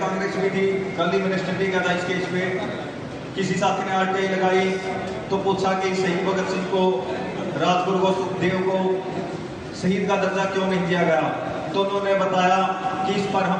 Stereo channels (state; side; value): identical; both; correlation 1.00